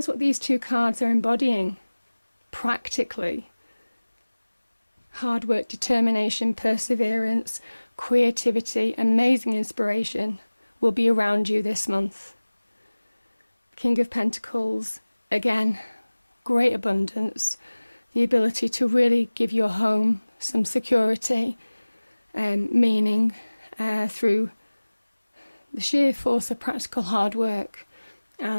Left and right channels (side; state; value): both; inverted; correlation -1.00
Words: what these two cards are embodying practically. Hard work, determination, perseverance, creativity, amazing inspiration will be around you this month. King of Pentacles, again, great abundance, the ability to really give your home some security and meaning through the sheer force of practical hard work